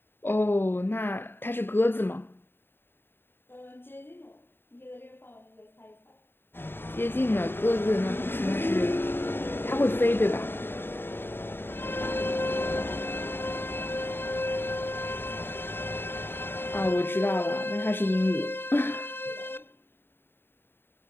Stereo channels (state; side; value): late; right; 0.11 ms